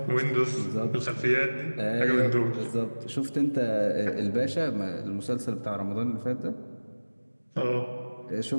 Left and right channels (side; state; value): both; inverted; correlation -1.00